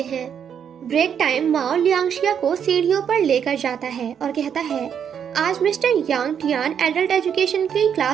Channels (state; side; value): quieter; left; 8.1 dB